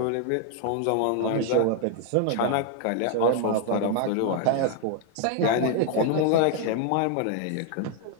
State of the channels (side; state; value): both; different; correlation 0.00